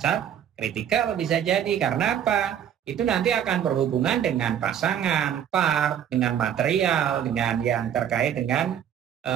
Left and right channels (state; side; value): quieter; left; 9.5 dB